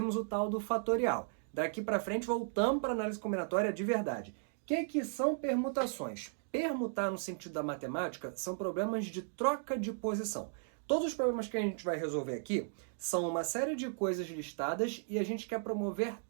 o tal do fatorial. Daqui para frente voltamos para análise combinatória de verdade. O que são permutações? Permutar no sentido da matemática são problemas de troca de posição. Todos os problemas que a gente vai resolver aqui são uma série de coisas listadas e a gente quer promover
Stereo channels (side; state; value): left; silent; digital silence